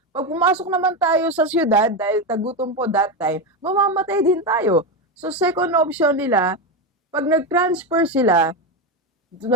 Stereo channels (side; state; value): both; normal; correlation 0.13